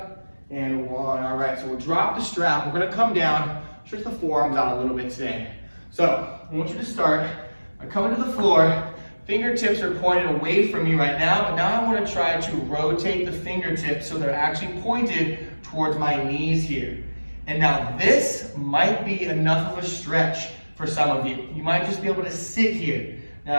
and 1. All right, so we'll drop the strap. We're gonna come down, stretch the forearms out a little bit today. So I want you to start by coming to the floor. Fingertips are pointed away from you right now, but now I want to try to rotate the fingertips so they're actually pointed towards my knees here. And now this might be enough of a stretch for some of you. You might just be able to sit here.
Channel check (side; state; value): both; inverted; correlation -1.00